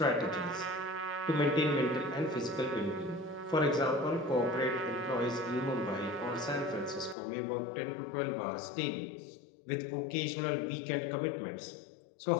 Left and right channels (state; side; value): drops out; right; at 7.2 s